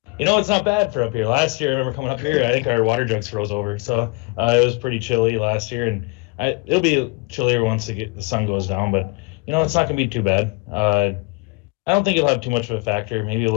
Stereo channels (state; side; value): quieter; right; 27.9 dB